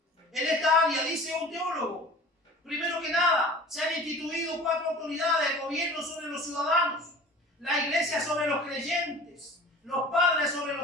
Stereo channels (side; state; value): both; normal; correlation 0.42